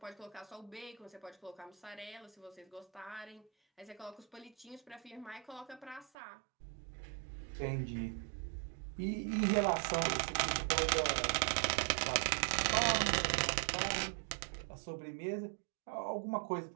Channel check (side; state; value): left; drops out; at 6.1 s